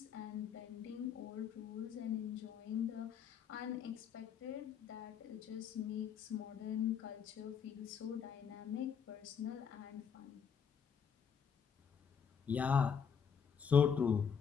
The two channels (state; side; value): quieter; right; 7.1 dB